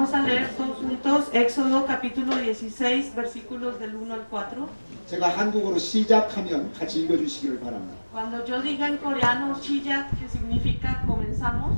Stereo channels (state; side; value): inverted; both; correlation -1.00